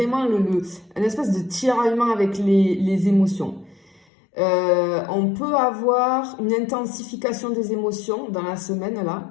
un espèce de tiraillement avec les émotions. On peut avoir une intensification des émotions dans la semaine,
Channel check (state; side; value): drops out; right; at 4.0 s